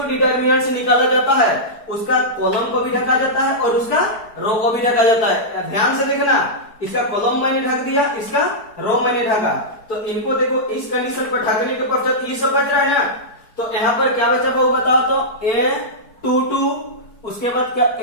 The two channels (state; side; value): late; right; 4.6 ms